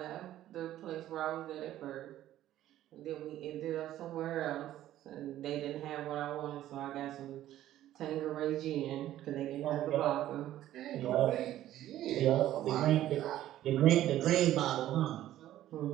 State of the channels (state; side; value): quieter; left; 13.2 dB